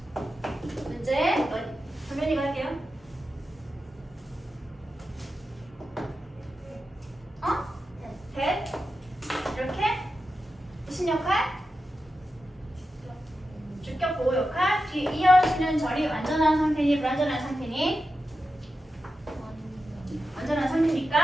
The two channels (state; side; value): normal; both; correlation 0.90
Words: 문제 정연이가 할게요. that 이렇게 무슨 역할? 주격 보호 역할. 뒤 이어지는 절이 완전한 상태니 불완전한 상태니? 완전한